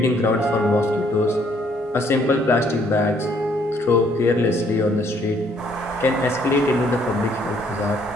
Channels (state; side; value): normal; both; correlation 0.66